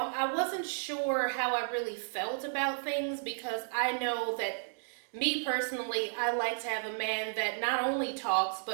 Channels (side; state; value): left; silent; digital silence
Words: wasn't sure how I really felt about things, because I know that me personally, I like to have a man that not only talks,